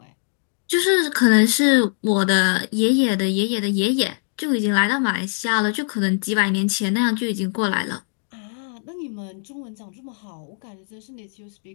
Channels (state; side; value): silent; right; 64 dB below the other